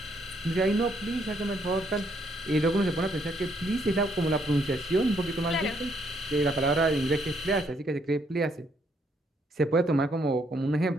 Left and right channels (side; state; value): both; normal; correlation 0.71